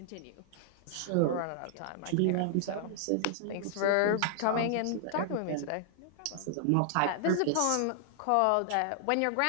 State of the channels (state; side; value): different; both; correlation -0.01